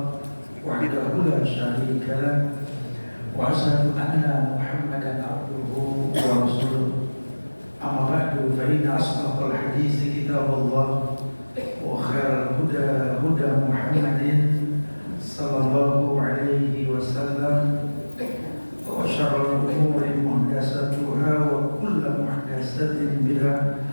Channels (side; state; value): both; inverted; correlation -1.00